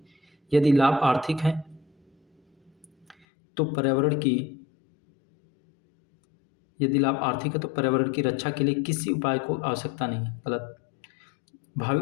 यदि लाभ आर्थिक है तो पर्यावरण की यदि लाभ आर्थिक है तो पर्यावरण की रक्षा के लिए किसी उपाय को आवश्यकता नहीं है। गलत।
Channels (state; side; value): drops out; right; at 3.2 s